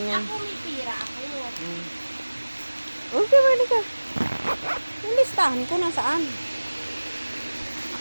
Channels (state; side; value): inverted; both; correlation -1.00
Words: yan. Ako may pira ako. Okay, mali ka. Yung listahan ko nasaan?